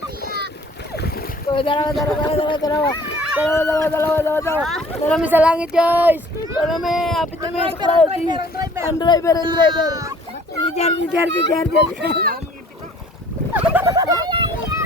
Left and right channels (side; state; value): both; normal; correlation 0.53